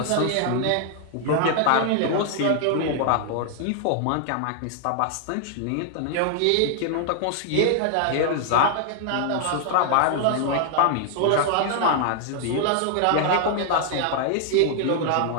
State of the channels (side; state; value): both; different; correlation 0.00